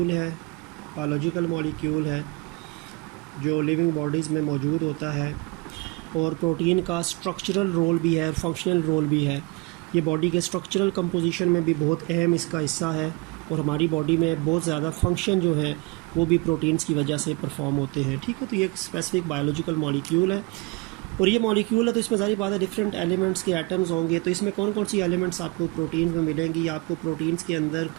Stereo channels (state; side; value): quieter; left; 26.6 dB